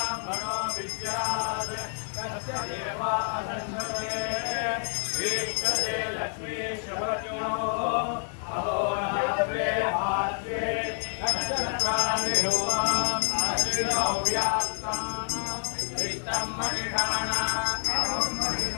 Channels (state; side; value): silent; right; 59 dB below the other